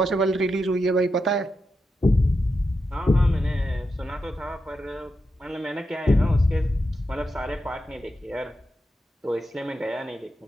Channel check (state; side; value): normal; both; correlation 0.87